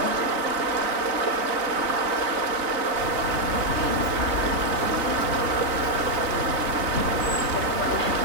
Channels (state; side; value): late; left; 3.2 ms